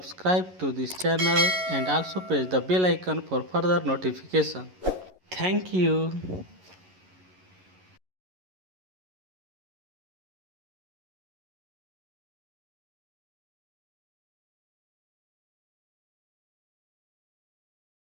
to this channel and also press the bell icon for further notification. Thank you.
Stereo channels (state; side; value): late; left; 11 ms